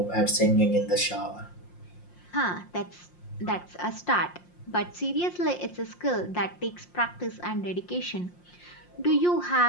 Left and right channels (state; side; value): late; right; 5.6 ms